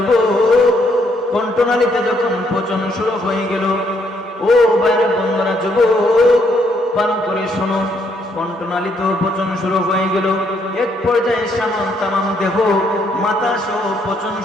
কণ্ঠনালীতে যখন পচন শুরু হয়ে গেল, ও ভাইরা বন্ধুরা, যুবক, ভালো করে শোনো, কণ্ঠনালীতেও পচন শুরু হয়ে গেল। এক পর্যায়ে তামাম দেহ, মাথা সহ পচন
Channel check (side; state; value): both; normal; correlation 0.72